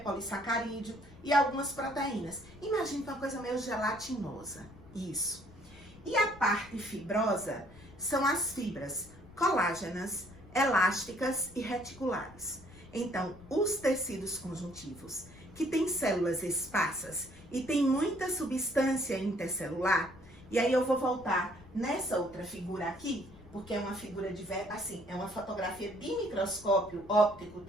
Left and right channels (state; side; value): noise; left; rumble, 20 dB below the sound